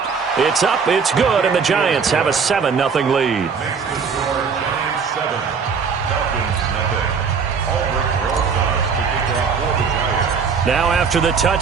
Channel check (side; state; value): left; quieter; 5.8 dB